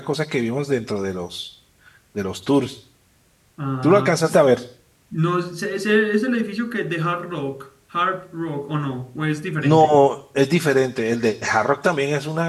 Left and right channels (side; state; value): both; identical; correlation 1.00